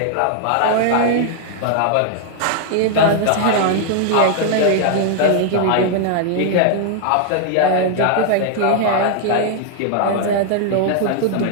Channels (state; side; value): different; both; correlation 0.00